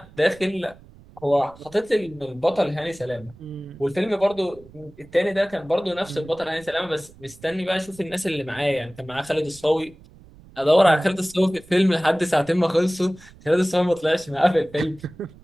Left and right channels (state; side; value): noise; right; rumble, 23 dB below the sound